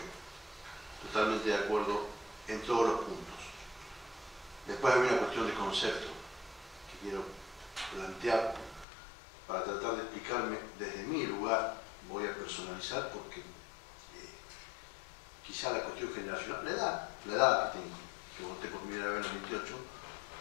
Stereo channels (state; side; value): drops out; right; at 8.8 s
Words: Totalmente de acuerdo en todos los puntos. Después hay una cuestión de concepto que quiero plantear para tratar de explicarme desde mi lugar. Voy a personalizar porque quizá la cuestión generacional, la edad que tengo, que voté por primera vez en el 28,